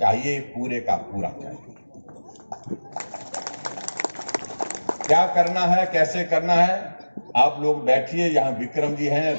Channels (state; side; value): inverted; both; correlation -1.00